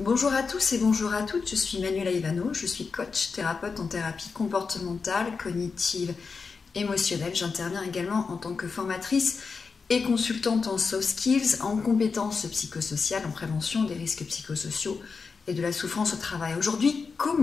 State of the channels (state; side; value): quieter; right; 4.9 dB